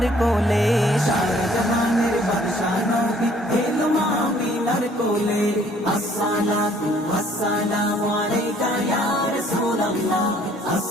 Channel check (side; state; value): both; normal; correlation 0.59